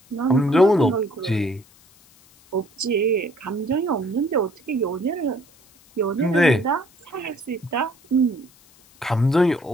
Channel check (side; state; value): left; noise; hiss, 29 dB below the sound